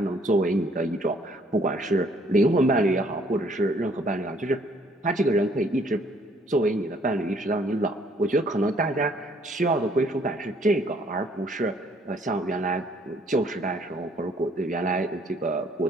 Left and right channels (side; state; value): both; normal; correlation 0.63